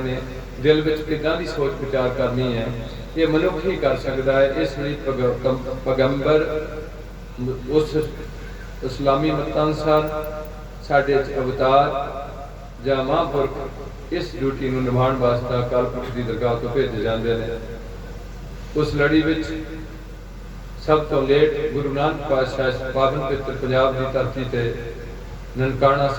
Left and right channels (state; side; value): identical; both; correlation 1.00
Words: ਨੇ, दिल में किदां दी सोच विचार करनी है, ये मनुख ही कर सकता है। इस लिए पैगंबर उस इस्लामी मत अनुसार साडे अवतार जां महापुरख इस ड्यूटी नूं निभाउण वास्ते अकाल पुरख की दरगाह तो भेजे जाते हैं। उस लड़ी विच सब तो लेट गुरु नानक पातशाह पावन पवित्र पंजाब की धरती ते ननकाणा